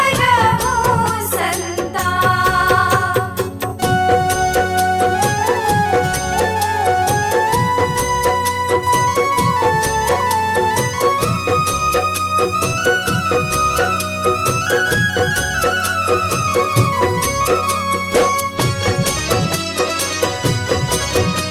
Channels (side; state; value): both; identical; correlation 1.00